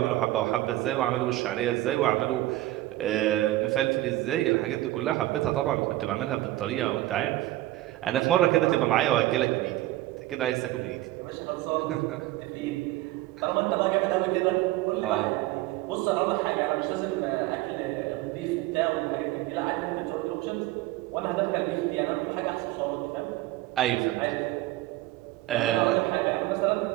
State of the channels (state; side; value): quieter; left; 16.6 dB